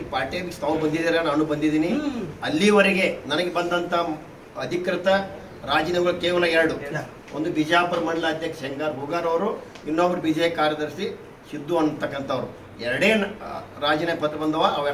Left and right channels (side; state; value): both; identical; correlation 1.00